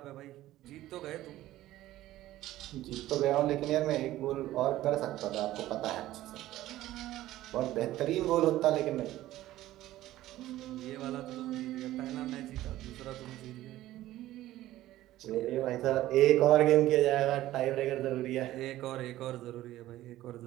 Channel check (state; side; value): quieter; left; 15.0 dB